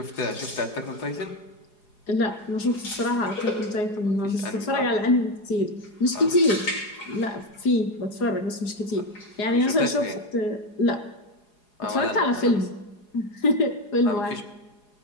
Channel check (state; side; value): late; right; 4.8 ms